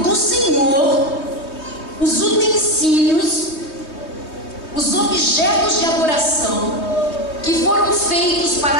do Senhor os utensílios, os objetos de adoração que foram feitos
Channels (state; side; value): late; right; 3.2 ms